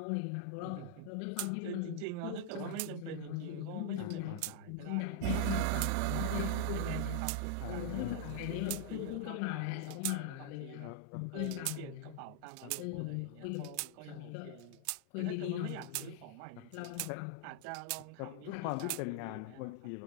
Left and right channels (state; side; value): different; both; correlation 0.00